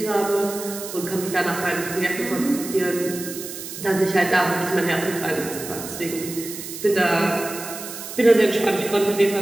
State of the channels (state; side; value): noise; right; hiss, 10 dB below the sound